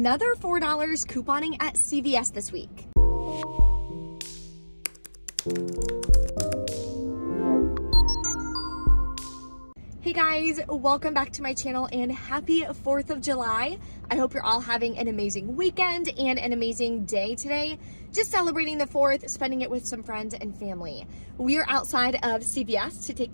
$4 couponing at CVS this week. Hey guys, welcome back to my channel and happy 4th of July. I hope you're all having an amazing weekend and an amazing day today. Just celebrating the 4th, spending it with some friends and family. We are outside of CVS to take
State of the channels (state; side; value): inverted; both; correlation -1.00